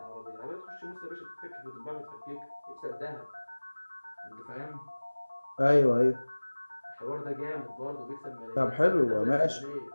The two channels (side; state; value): both; inverted; correlation -1.00